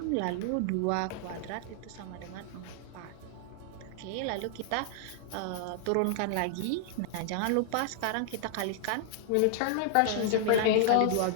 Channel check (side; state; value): both; different; correlation 0.00